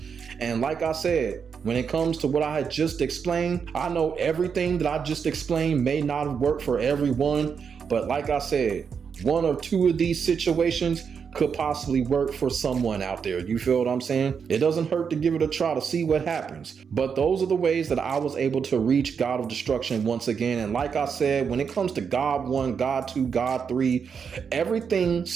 And like I said, when it comes to what I had just explained, I know everything that I just explained may not have worked for everyone, but like I said, one or two of these situations could possibly work for someone out there. You feel what I'm saying? It doesn't hurt to give it a try to see what happens. But those are the ways that I was able to reach God of Destruction once again. And like I said, when it comes to God 1, God 2, God 3, everything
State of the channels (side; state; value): left; quieter; 6.5 dB